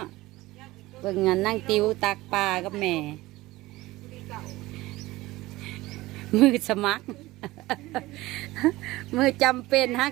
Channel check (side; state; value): left; quieter; 18.8 dB